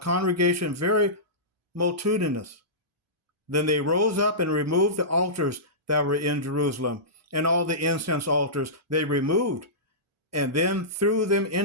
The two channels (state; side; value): normal; both; correlation -0.18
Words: very multitudinous. Then they rose up and removed the altars that were in Jerusalem, and all the incense altars they removed, and then threw them